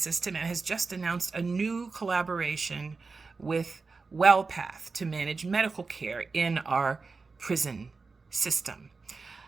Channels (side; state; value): left; quieter; 4.3 dB